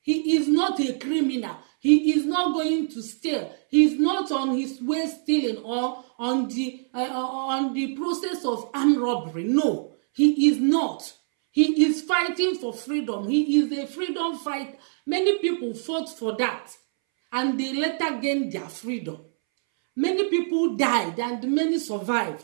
He is not a criminal. He is not going to steal. He is not on his way stealing, or on the process of armed robbery. No, he is not. He is fighting for freedom. He is a freedom fighter. Many people fought for that, and they later gained their freedom. Many people died, and many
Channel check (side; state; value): left; silent; 62 dB below the other